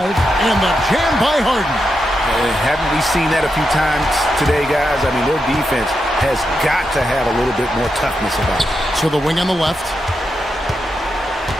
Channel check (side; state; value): both; normal; correlation 0.86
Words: and the jam by Harden. Haven't we seen that a few times today, guys? I mean, their defense has got to have a little bit more toughness about it. So the wing on the left.